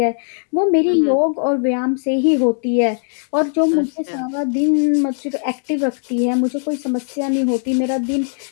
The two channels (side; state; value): right; silent; digital silence